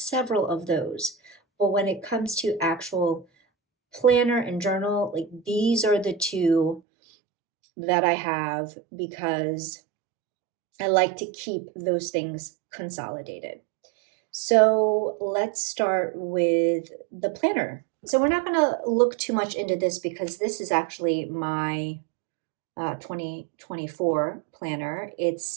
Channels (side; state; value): left; drops out; at 6.8 s